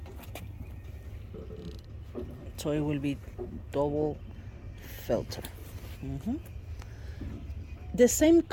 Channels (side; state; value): both; identical; correlation 1.00